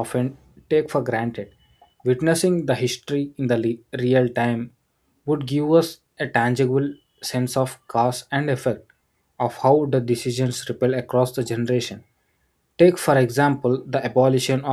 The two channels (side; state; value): both; identical; correlation 1.00